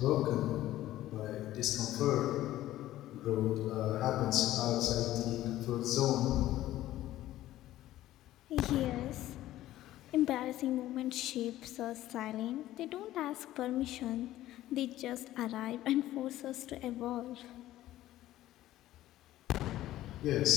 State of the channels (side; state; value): right; quieter; 14.5 dB